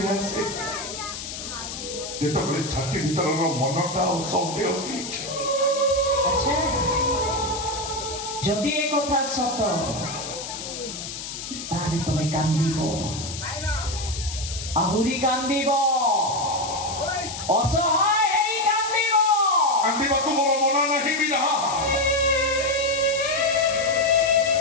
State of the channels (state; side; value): noise; left; hiss, 8 dB below the sound